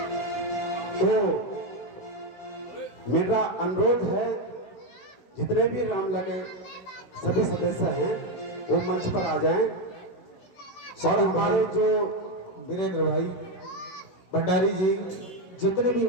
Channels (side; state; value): right; late; 16 ms